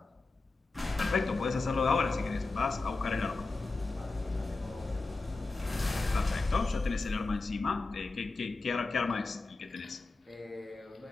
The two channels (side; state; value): right; quieter; 3.6 dB